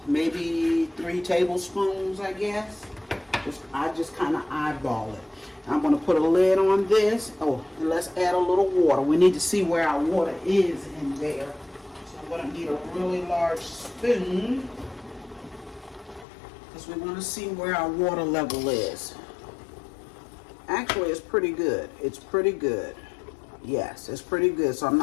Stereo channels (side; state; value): right; drops out; at 16.2 s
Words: maybe 3 tablespoons, I guess. I just kind of eyeball it. I'm going to put a lid on this. Oh, and let's add a little water. We need to see where our water is in there. So I'm going to need a really large spoon because we want to see where our water level is. Actually, it's pretty good. It's pretty good. Yes, it's pretty good. So I'm